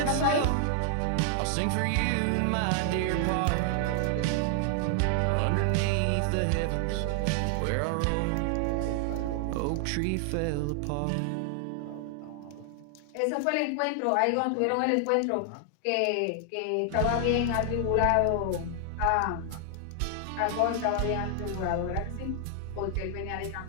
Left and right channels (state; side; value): different; both; correlation 0.00